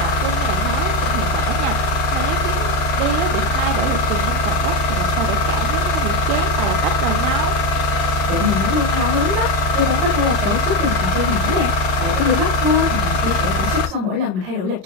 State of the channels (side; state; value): left; late; 39 ms